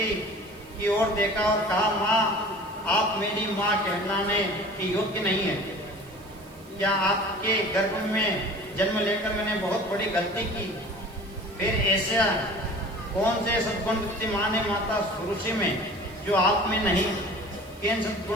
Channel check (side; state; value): right; noise; hiss, 26 dB below the sound